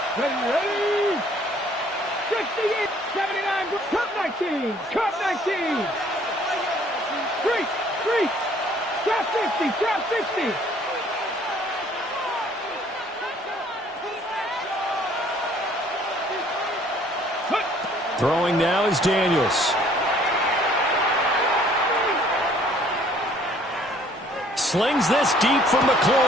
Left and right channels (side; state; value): both; normal; correlation 0.59